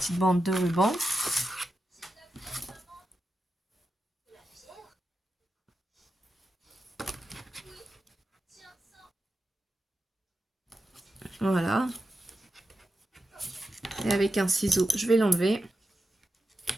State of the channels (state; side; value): normal; both; correlation 0.90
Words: bande de ruban. Voilà. Et avec un ciseau, je vais l'enlever.